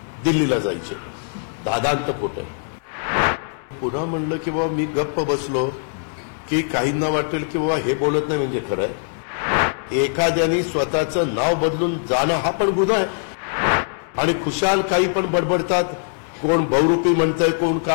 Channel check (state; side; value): silent; right; digital silence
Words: दिल्लीला जायचे. दादांत खोट आहे. पुन्हा म्हणलं की बाबा मी गप्प बसलो की काहींना वाटेल की बाबा हे बोलत नाही म्हणजे खरं आहे. एखाद्याने स्वतःचं नाव बदलून जाणं हा पण गुन्हा आहे. आणि खुशाल काही पण बडबडतात. कोण बहुरूपी म्हणतंय, कोण